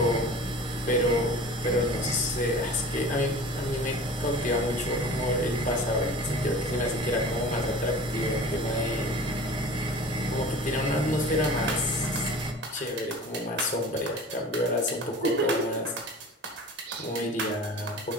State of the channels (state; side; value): normal; both; correlation 0.40